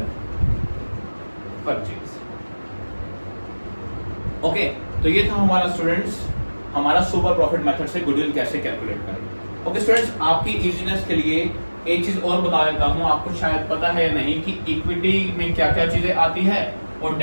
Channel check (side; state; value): both; inverted; correlation -1.00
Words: purchase. Okay, तो ये था हमारा स्टूडेंट्स हमारा सुपर प्रॉफिट मेथड से गुडविल कैसे कैलकुलेट करें। ओके स्टूडेंट्स, आपकी इजीनेस के लिए एक चीज और बता देता हूं, आपको शायद पता है नहीं कि इक्विटी में क्या क्या चीजें आती है और